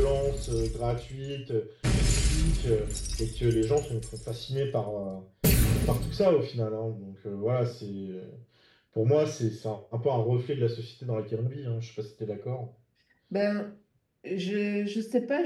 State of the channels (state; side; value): identical; both; correlation 1.00